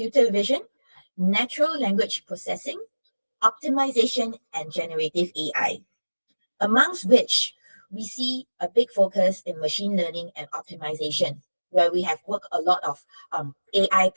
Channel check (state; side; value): inverted; both; correlation -1.00